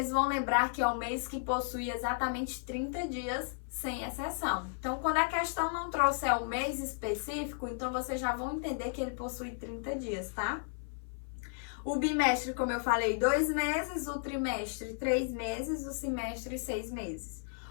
vão lembrar que é o mês que possui exatamente 30 dias, sem exceção. Então, quando a questão não trouxer o mês específico, então vocês já vão entender que ele possui 30 dias, tá? O bimestre, como eu falei, 2 meses, o trimestre, 3 meses, o semestre, 6 meses.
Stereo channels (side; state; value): right; silent; 55 dB below the other